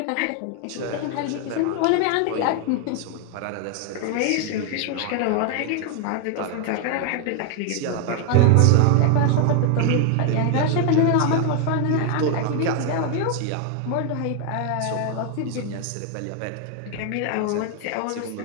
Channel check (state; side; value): different; both; correlation 0.00